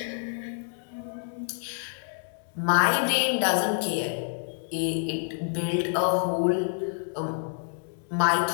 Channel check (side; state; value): right; silent; digital silence